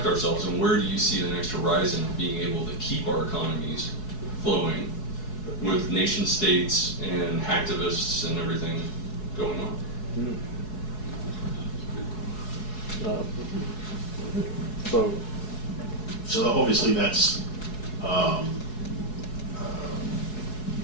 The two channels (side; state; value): right; late; 4.7 ms